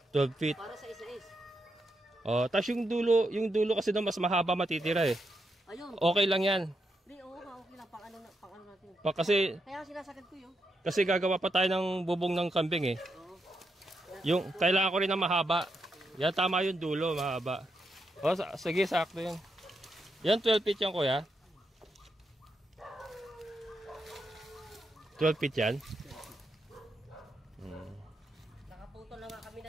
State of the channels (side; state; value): both; normal; correlation 0.82